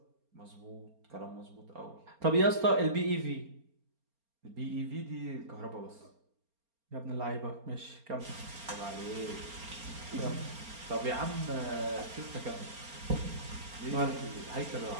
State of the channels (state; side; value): late; left; 4.3 ms